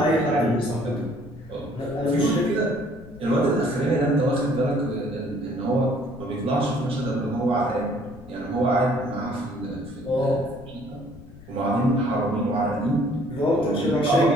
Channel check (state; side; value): noise; left; rumble, 20 dB below the sound